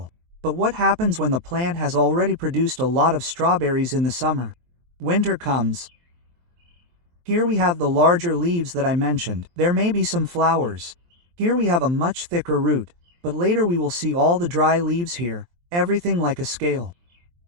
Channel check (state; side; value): late; left; 23 ms